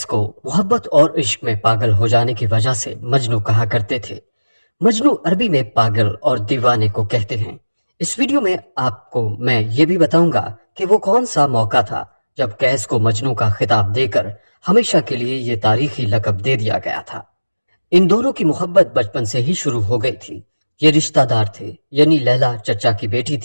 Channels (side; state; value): both; inverted; correlation -1.00